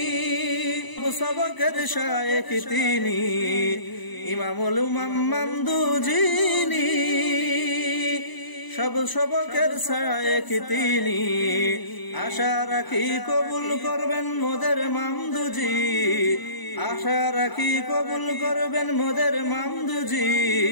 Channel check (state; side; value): late; right; 1.0 ms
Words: সবকের শায়েখ তিনি। ইমামুল উমাম মামদুজিনী সব সবকের শায়েখ তিনি। আশা রাখি কবুল করবেন মোদের মামদুজি, আশা রাখি কবুল করবেন মোদের মামদুজি